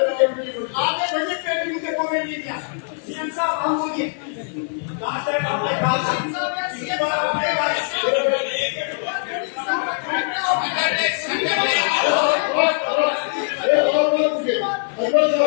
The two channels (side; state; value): right; silent; digital silence